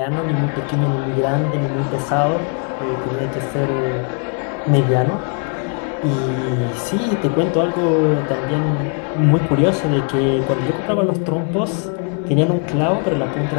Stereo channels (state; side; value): quieter; right; 39.8 dB